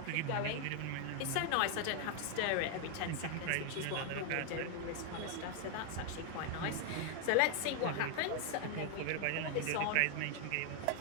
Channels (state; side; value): different; both; correlation 0.00